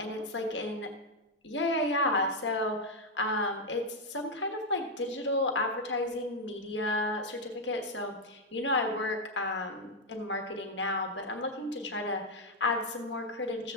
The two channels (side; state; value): both; normal; correlation 0.01